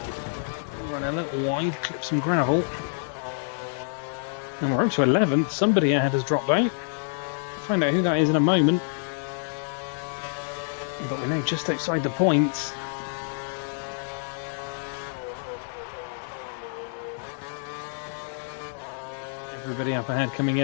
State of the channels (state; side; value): silent; right; digital silence